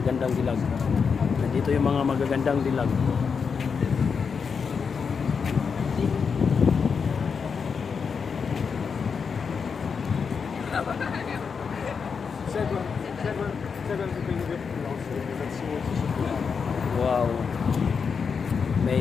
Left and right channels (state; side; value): quieter; right; 5.9 dB